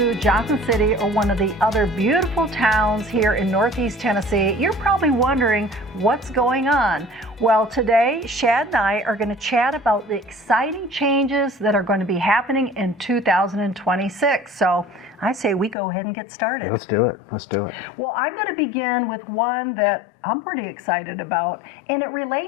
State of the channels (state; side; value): drops out; right; at 15.8 s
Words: Johnson City or one of the other beautiful towns here in Northeast Tennessee, you're probably wondering what's going on. Well, today, Shad and I are going to chat about the exciting changes that are going to be happening in 2026. So I say we go ahead and get started. Let's do it. Let's do it. Well, I'm going to begin with one that I'm pretty excited about, and it